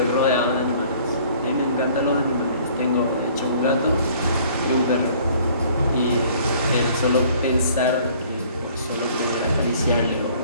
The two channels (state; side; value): inverted; both; correlation -0.56